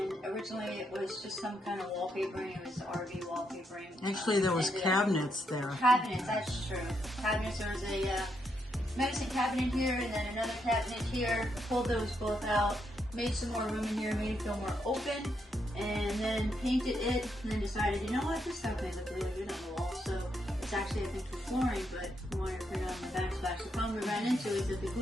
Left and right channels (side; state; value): both; normal; correlation 0.79